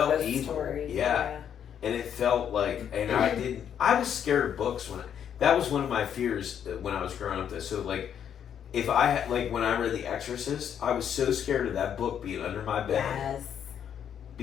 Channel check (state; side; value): quieter; right; 8.8 dB